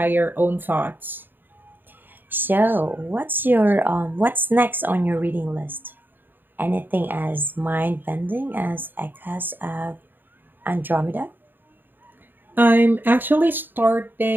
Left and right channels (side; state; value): left; late; 0.093 ms